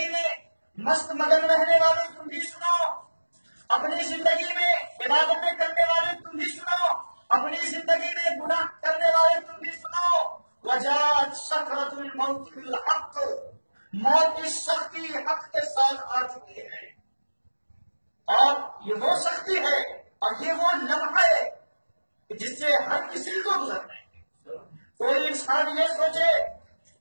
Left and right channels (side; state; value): both; inverted; correlation -1.00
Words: میں مست مگن رہنے والے تم بھی سنو، اپنی زندگی میں عبادتیں کرنے والے تم بھی سنو، اپنی زندگی میں گناہ کرنے والے تم بھی سنو، وجاءت سکرۃ الموت بالحق، موت کی سختی حق کے ساتھ آ چکی ہے، اور یہ وہ سختی ہے اور یہ وہ لمحہ ہے جس سے ہر کسی کو گزرنا ہے۔ کوئی انسان یہ سوچے